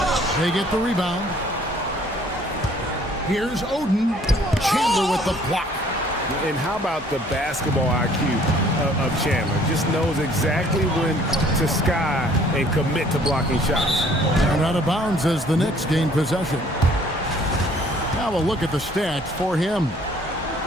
They get the rebound. Here's Oden. Chandler with the block. And how about the basketball IQ of Chandler? Just knows exactly when to sky and commit to blocking shots. And out of bounds as the Knicks gain possession. Now a look at the stats for him.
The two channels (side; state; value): both; normal; correlation 0.58